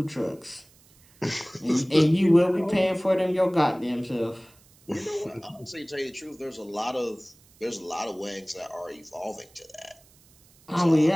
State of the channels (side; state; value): right; noise; hiss, 29 dB below the sound